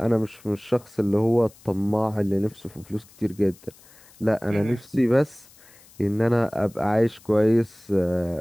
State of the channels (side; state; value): left; noise; hiss, 26 dB below the sound